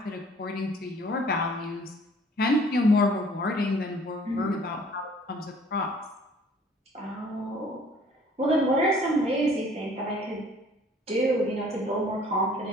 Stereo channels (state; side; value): normal; both; correlation 0.55